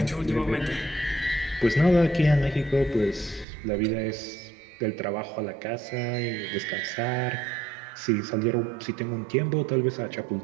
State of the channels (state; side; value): drops out; left; at 3.5 s